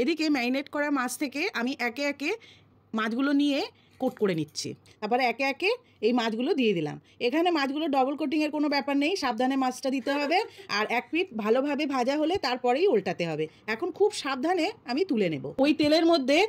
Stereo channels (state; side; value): identical; both; correlation 1.00